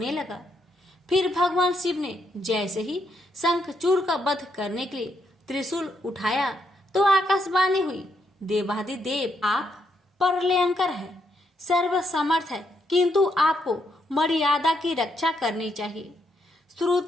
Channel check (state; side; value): normal; both; correlation 0.77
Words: लगा। फिर भगवान शिव ने जैसे ही शंखचूड़ का वध करने के लिए त्रिशूल उठाया तो आकाशवाणी हुई, देवाधिदेव आप प्रलयंकर है, सर्वसमर्थ है, किंतु आपको मर्यादा की रक्षा करनी चाहिए।